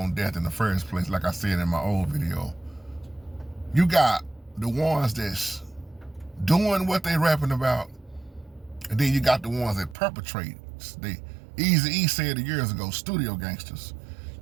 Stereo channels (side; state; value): left; drops out; at 10.0 s